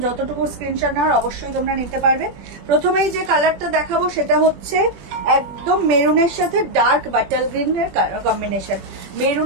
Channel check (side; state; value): left; late; 21 ms